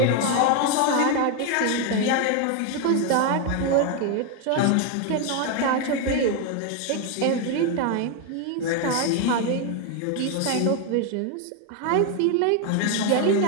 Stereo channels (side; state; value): both; different; correlation 0.01